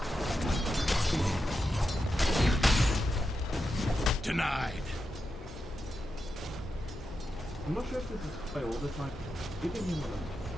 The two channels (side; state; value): both; normal; correlation 0.88